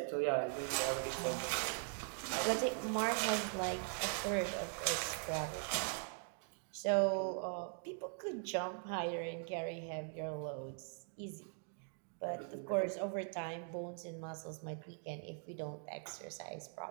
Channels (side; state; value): left; silent; 50 dB below the other